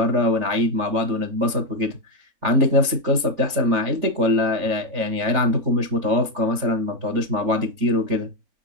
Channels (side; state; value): left; late; 3.4 ms